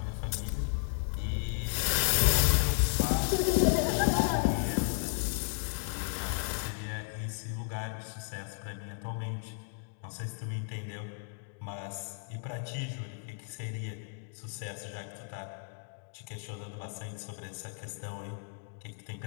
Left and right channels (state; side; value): silent; right; digital silence